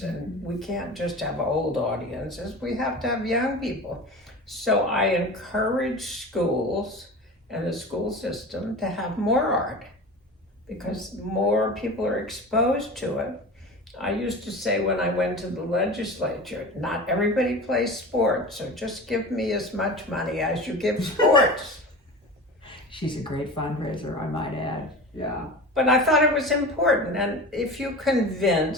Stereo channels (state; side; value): normal; both; correlation 0.33